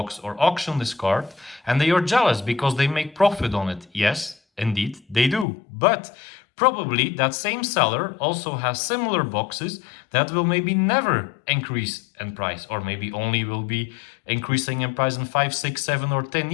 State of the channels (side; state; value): right; drops out; at 5.5 s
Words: or auction this card, and they are jealous because they make profit on it. Yes, indeed, they do. But probably that same seller also has similar boxes that will maybe never increase in price, or maybe only will be increasing in price in 5, 6, 7, or 10